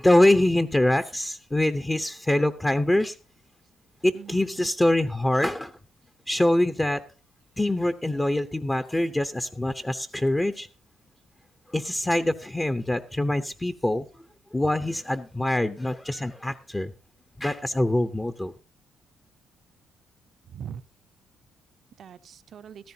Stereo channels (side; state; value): both; normal; correlation 0.98